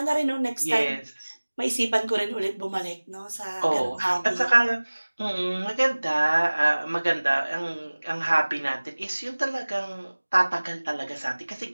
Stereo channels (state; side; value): inverted; both; correlation -1.00